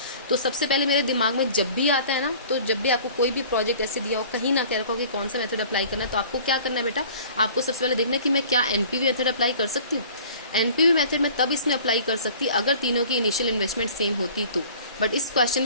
तो सबसे पहले मेरे दिमाग में जब भी आता है ना, तो जब भी आपको कोई भी प्रोजेक्ट ऐसे दिया हो, कहीं ना कह रखा हो कि कौन सा मेथड अप्लाई करना है, तो आपको क्या करना है बेटा, आपको सबसे पहले देखना है कि मैं क्या NPV मेथड अप्लाई कर सकती हूँ। NPV मेथड में तब इसमें अप्लाई कर सकती अगर तीनों की इनिशियल इन्वेस्टमेंट सेम होती तो, बट इस क्वेश्चन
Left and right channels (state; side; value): inverted; both; correlation -0.47